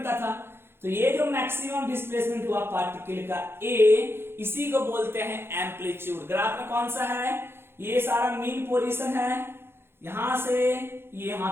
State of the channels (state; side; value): late; left; 0.11 ms